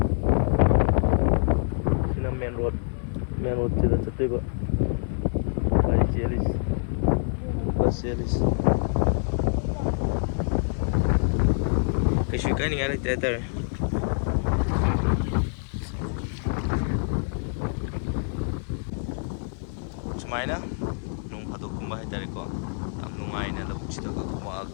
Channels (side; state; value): right; silent; 59 dB below the other